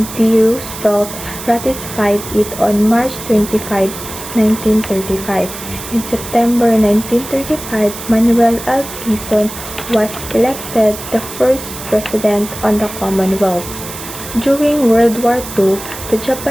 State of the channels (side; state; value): right; noise; hiss, 11 dB below the sound